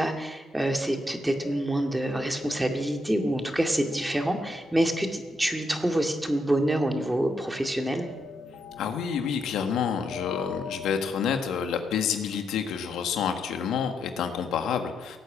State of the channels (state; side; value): normal; both; correlation 0.80